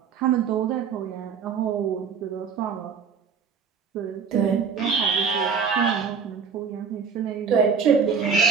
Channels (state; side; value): quieter; left; 6.2 dB